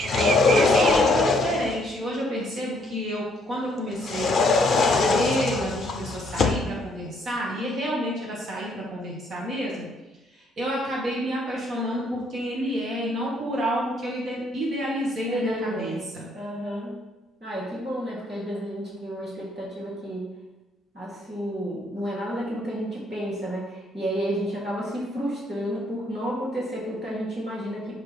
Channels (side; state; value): both; normal; correlation 0.68